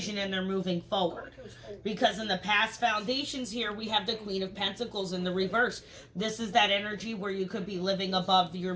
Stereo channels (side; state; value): both; identical; correlation 1.00